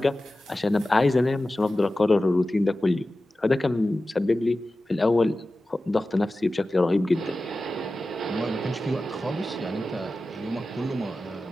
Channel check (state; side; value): normal; both; correlation 0.95